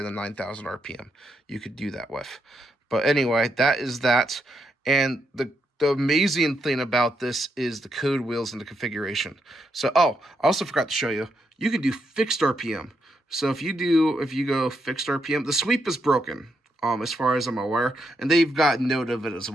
than 9,000 RPM, you could do that with. But anyway, that is that. And the amazing thing about this is the code wheels and the configuration. So, I also forgot to show you, you can do fixed RPM. So if you go fixed RPM, the sweep is broken, as far as I'm aware, and they've got note of it as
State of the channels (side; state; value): both; normal; correlation 0.80